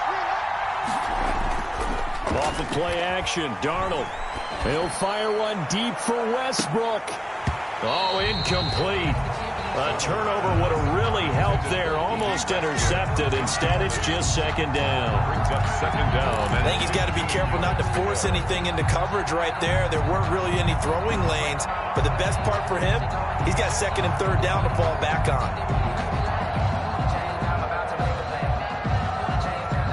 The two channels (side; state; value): both; identical; correlation 1.00